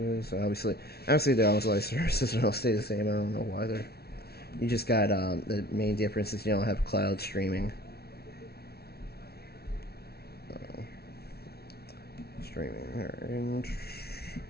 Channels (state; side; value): late; right; 0.45 ms